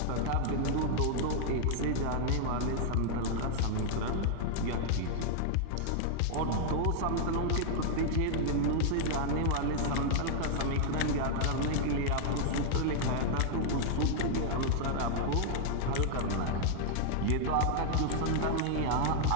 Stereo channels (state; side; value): different; both; correlation 0.00